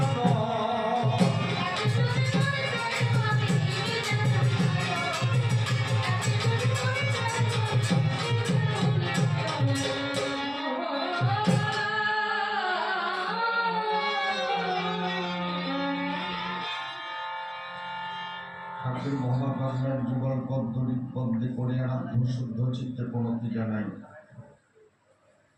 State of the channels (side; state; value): both; identical; correlation 1.00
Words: ঠাকুর মহাপ্রাণের যুগল পদ্ধতি বন্দে করে আরাধ্য শুদ্ধ চিত্তে প্রণতি জানাই।